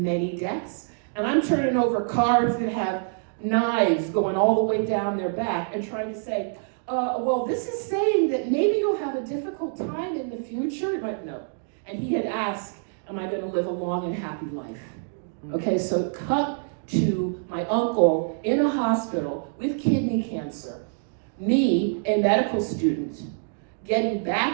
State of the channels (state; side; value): silent; left; digital silence